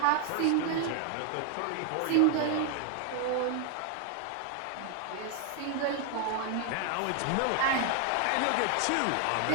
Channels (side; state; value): both; different; correlation 0.00